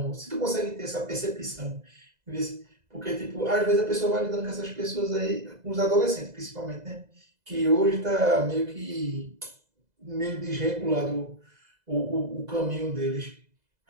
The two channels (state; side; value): late; left; 2.0 ms